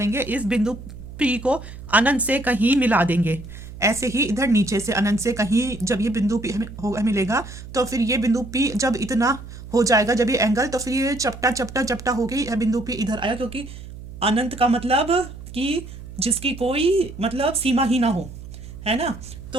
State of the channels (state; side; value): noise; right; hum, 13 dB below the sound